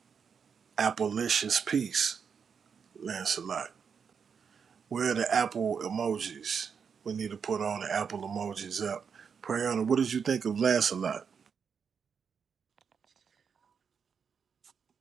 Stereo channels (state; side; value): quieter; left; 6.5 dB